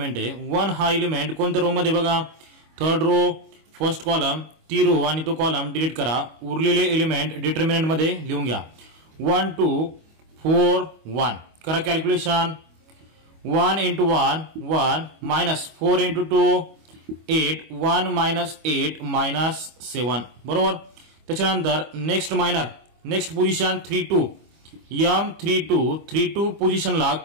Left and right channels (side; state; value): left; late; 25 ms